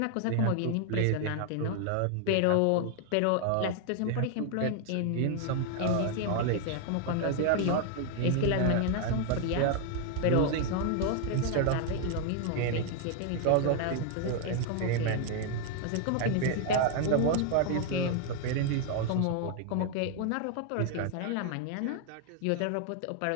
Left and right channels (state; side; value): different; both; correlation 0.00